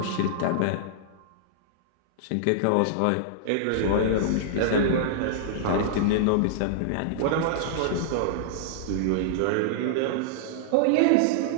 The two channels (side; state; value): both; different; correlation -0.02